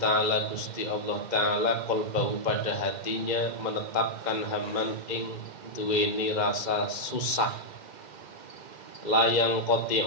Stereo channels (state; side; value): late; right; 2.1 ms